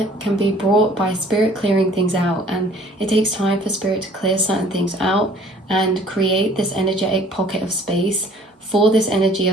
can be brought by spirit clearing things out, and it takes time for spirit to clear certain things out and create this energetic pocket of space for this energy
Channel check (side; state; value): both; normal; correlation 0.54